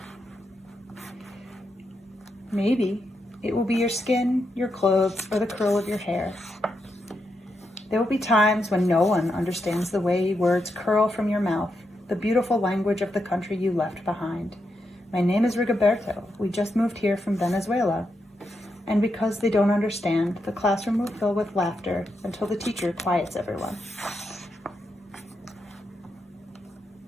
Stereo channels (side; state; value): both; normal; correlation 0.84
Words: Maybe it will be your skin, your clothes, or the curl of your hair. There will be times when no one understands the way words curl from your mouth, the beautiful language of the country you left behind. My name is Rigoberto. We just moved here from Venezuela. And because they don't understand, the classroom will fill with laughter until the teacher quiets everyone.